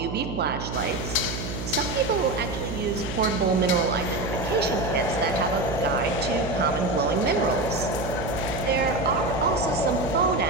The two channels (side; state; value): right; noise; hum, 6 dB below the sound